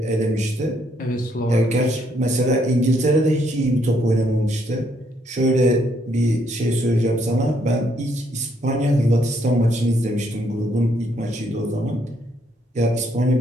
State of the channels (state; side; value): normal; both; correlation 0.71